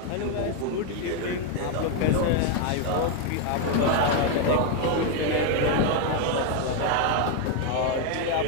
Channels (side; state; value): both; different; correlation 0.01